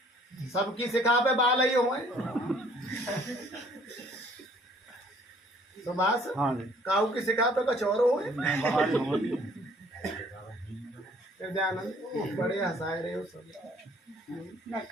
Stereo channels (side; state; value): both; normal; correlation 0.59